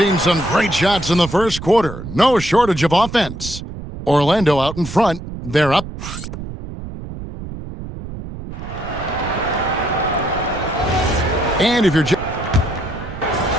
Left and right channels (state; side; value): noise; right; rumble, 10 dB below the sound